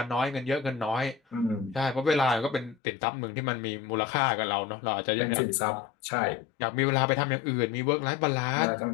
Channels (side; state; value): right; drops out; at 2.8 s